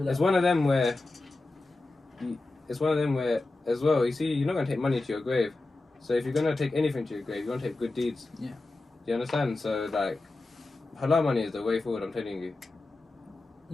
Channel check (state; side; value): quieter; right; 3.1 dB